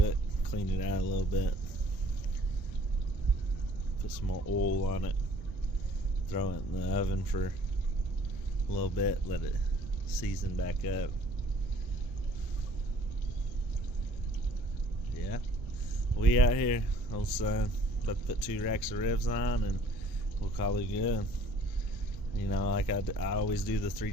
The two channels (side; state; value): right; noise; rumble, 14 dB below the sound